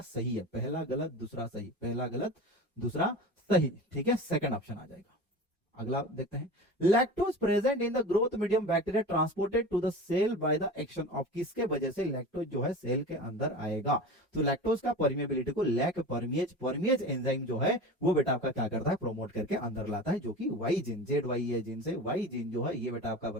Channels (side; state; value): both; normal; correlation 0.33